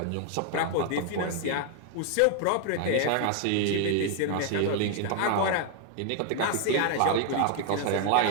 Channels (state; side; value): different; both; correlation 0.00